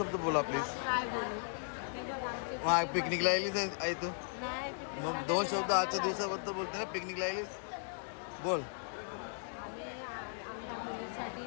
बोला प्लीज. काय बोलू हे बघ आमचे हा पिकनिकला आलीच आहे तू. नाही picnic मग ला 2 नाही शब्द गेलो. आजच्या दिवसाबद्दल बोलते ना पिकनिकला आलीस. बोल. आम्ही आमच्या मुलीसाठी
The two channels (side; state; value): right; silent; 53 dB below the other